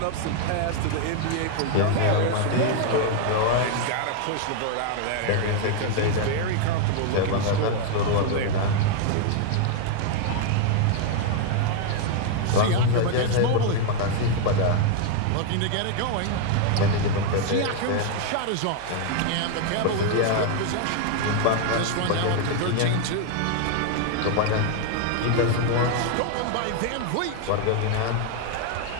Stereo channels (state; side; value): different; both; correlation 0.00